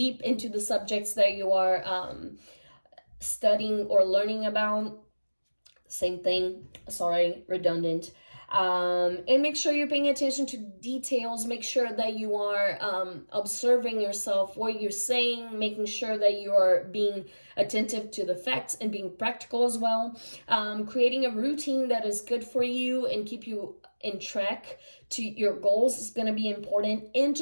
into the subjects that you are studying or learning about. Same thing, sorry, redundant. And make sure you're paying attention to details. Make sure that you are observing yourself, what you're saying, making sure that you are being attentive to the facts and being practical as well. Creating a routine that is good for you and keep you in track to your goals is going to be important. And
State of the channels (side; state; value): both; inverted; correlation -1.00